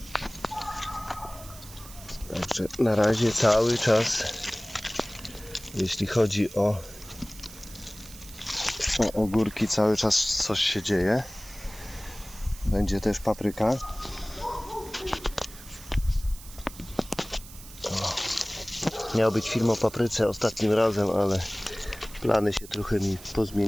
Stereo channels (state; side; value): noise; right; hiss, 17 dB below the sound